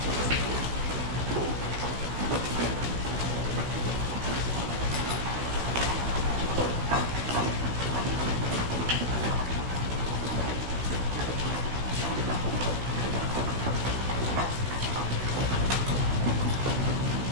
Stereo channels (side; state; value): left; late; 16 ms